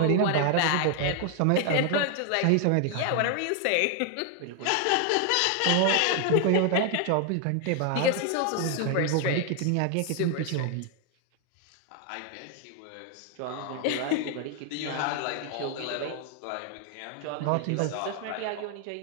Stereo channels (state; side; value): different; both; correlation 0.00